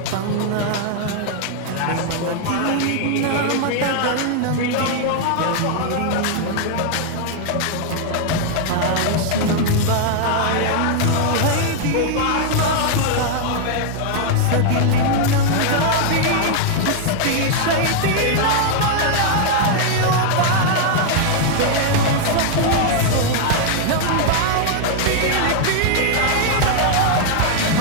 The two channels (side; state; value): both; different; correlation 0.00